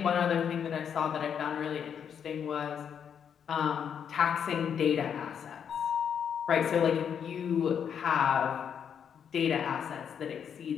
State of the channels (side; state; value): right; quieter; 7.9 dB